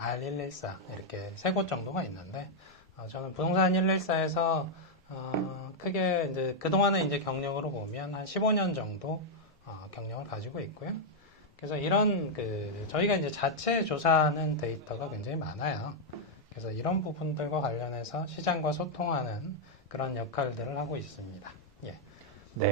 이렇게 세 곳 정도가 있는데, 저는 부동산 114에서 크게 이제 그동안의 이제 경력으로 보면 한 15년 정도 경력을 가지고 있고요. 그래서 이런 저희가 이제 자체 조사하는 데이터가 굉장히 많아요. 그래서 이런 부분들과 관련해서 시장과 소통하는 그런 역할들을 하고 있습니다. 예.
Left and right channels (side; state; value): both; normal; correlation -0.02